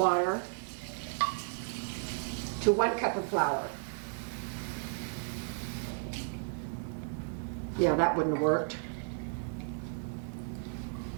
to 1 cup of flour. Yeah, that wouldn't have worked.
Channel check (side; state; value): left; silent; digital silence